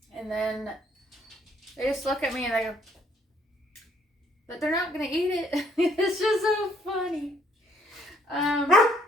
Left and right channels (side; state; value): both; normal; correlation 0.67